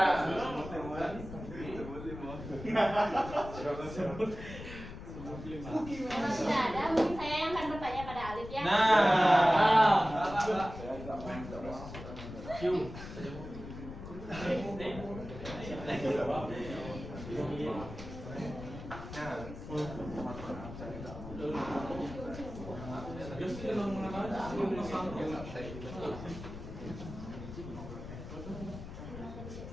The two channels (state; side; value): noise; left; rumble, 11 dB below the sound